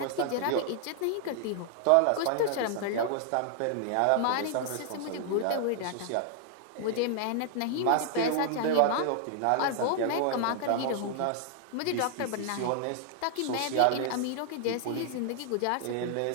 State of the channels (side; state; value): both; different; correlation -0.01